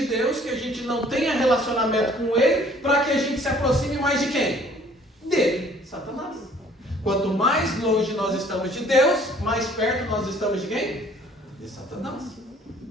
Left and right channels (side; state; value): both; normal; correlation 0.56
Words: Deus, que a gente não tenha relacionamento com Ele, para que a gente se aproxime mais de quem? Dele, Satanás. Quanto mais longe nós estamos de Deus, mais perto nós estamos de quem? De Satanás.